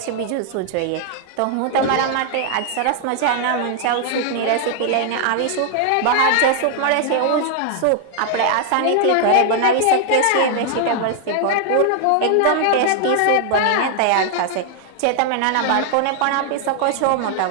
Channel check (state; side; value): different; both; correlation 0.00